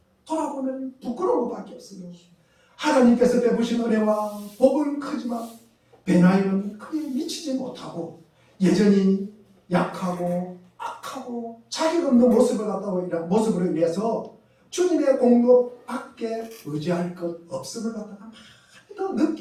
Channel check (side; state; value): both; identical; correlation 1.00